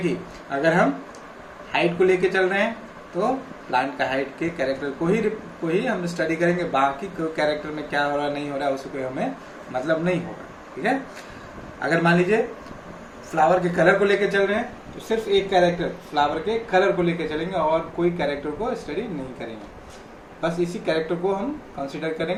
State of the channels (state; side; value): identical; both; correlation 1.00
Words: अगर हम हाइट को लेके चल रहे हैं तो प्लांट का हाइट के कैरेक्टर को ही हम स्टडी करेंगे, बाकी कैरेक्टर में क्या हो रहा नहीं हो रहा उससे कोई हमें मतलब नहीं होगा। ठीक है, अगर मान लीजिए फ्लावर के कलर को लेके चल रहे हैं तो सिर्फ एक कैरेक्टर फ्लावर के कलर को लेके चलेंगे और कोई कैरेक्टर को स्टडी नहीं करेंगे, बस इसी कैरेक्टर को हम कंसीडर